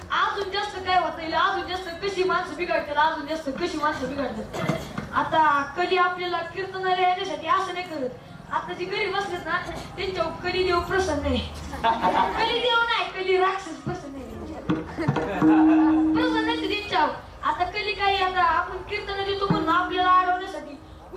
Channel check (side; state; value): both; identical; correlation 1.00